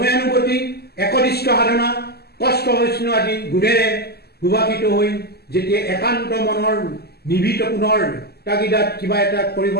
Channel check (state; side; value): late; right; 0.46 ms